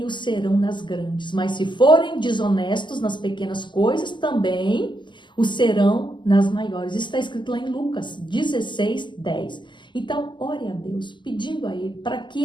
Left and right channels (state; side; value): late; right; 0.22 ms